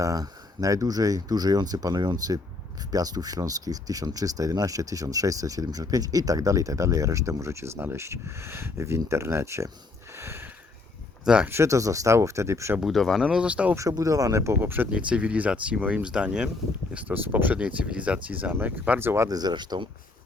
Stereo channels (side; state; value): right; quieter; 3.5 dB